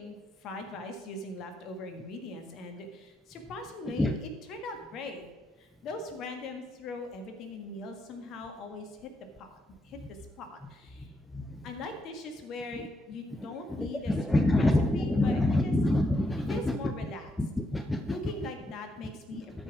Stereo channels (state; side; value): normal; both; correlation 0.80